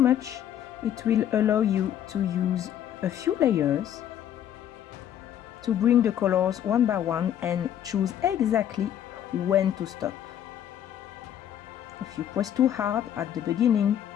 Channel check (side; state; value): right; quieter; 10.4 dB